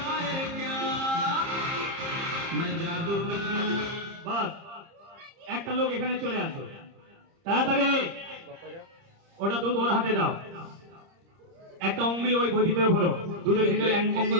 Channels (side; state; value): left; late; 30 ms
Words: क्या मैं जादूगर বাস একটা লোক এখানে চলে আসো তাড়াতাড়ি ওটা দুধ ওর হাতে দাও একটা অঙ্গুলি ওই বই ভিতরে ভরো দুধের ভিতরে